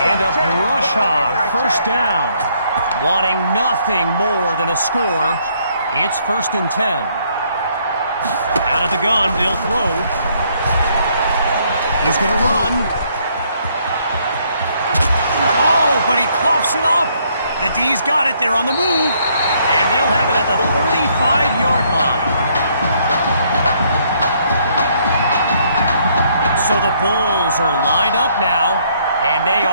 a Brush Hog 1st down. Wanting nothing more than a score, it's 1st and 10. Out of the gun, they'll throw. He's going to run. Oh, but he coughs it up. The D's got it. They're on the move. And they'll have it at the 35-yard line. So the Bulls are lined up now, and they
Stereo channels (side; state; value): both; inverted; correlation -0.69